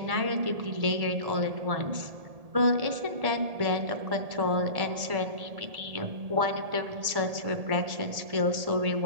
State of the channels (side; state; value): left; late; 1.7 ms